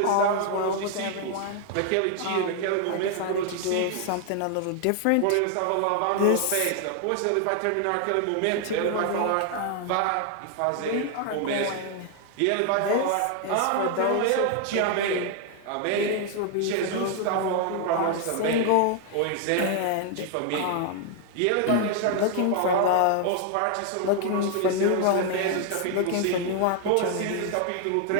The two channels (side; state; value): both; different; correlation 0.00